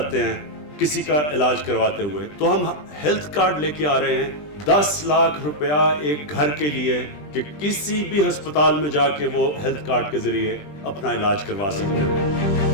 हैं किसी का इलाज करवाते हुए। तो हम हेल्थ कार्ड लेके आ रहे हैं 10 लाख रुपया एक घर के लिए कि किसी भी अस्पताल में जाके वो हेल्थ कार्ड के जरिए अपना इलाज करवा सकते हैं।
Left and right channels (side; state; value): right; late; 20 ms